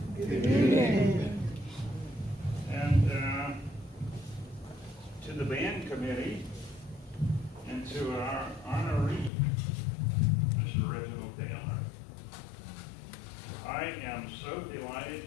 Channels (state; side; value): drops out; right; at 9.3 s